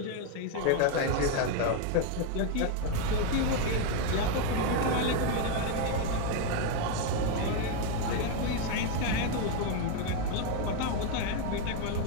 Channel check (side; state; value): both; different; correlation 0.01